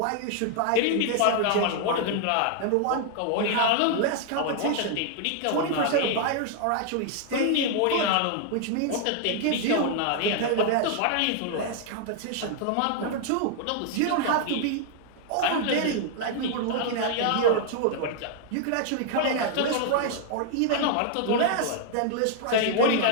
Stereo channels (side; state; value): both; different; correlation 0.00